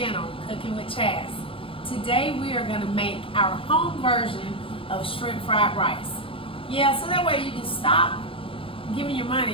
Cooking with Chaz. Today we are going to make our home version of shrimp fried rice. Yeah, so that way you can stop giving your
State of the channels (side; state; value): right; late; 0.26 ms